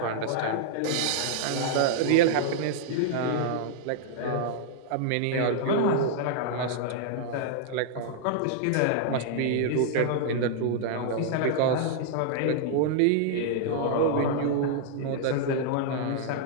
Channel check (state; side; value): different; both; correlation -0.01